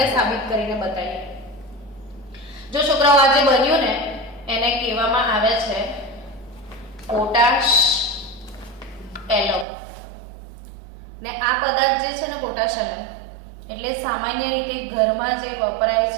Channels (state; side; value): drops out; left; at 9.7 s